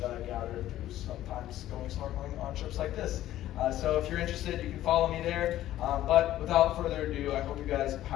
I gathered through sometimes going snorkeling on trips like this. So if you're interested, you can follow me there. But without further ado, I hope you guys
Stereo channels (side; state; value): right; quieter; 13.6 dB